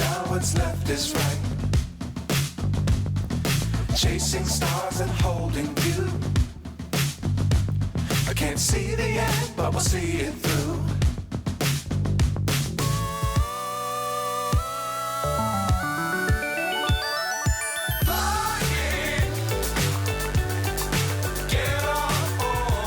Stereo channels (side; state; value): both; identical; correlation 1.00